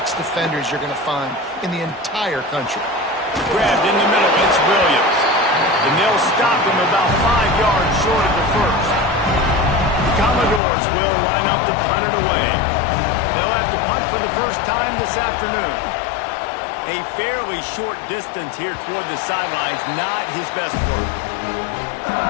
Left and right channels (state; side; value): drops out; right; at 10.6 s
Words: defenders you're going to find in the entire country. Grabbed in the middle, it's Williams. And they'll stop him about 5 yards short of the first. The Commodores will line up to punt it away. They'll have to punt for the first time this afternoon. A fairly short distance here toward the sidelines, not his best work.